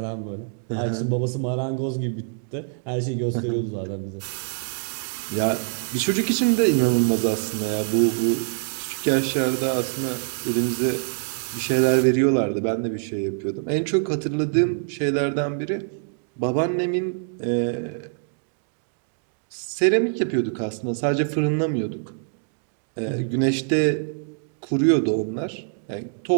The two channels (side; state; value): left; silent; digital silence